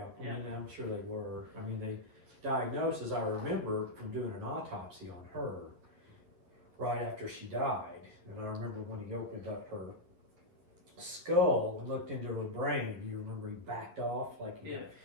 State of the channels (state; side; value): late; left; 11 ms